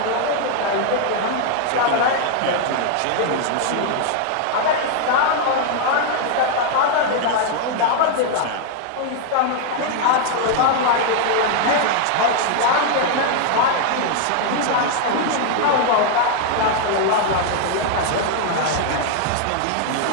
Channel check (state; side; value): different; both; correlation 0.00